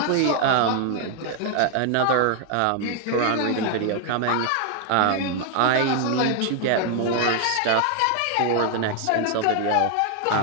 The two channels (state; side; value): different; both; correlation 0.00